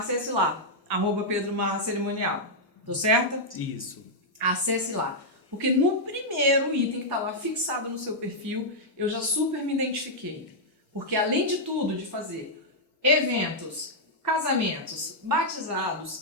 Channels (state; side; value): normal; both; correlation -0.06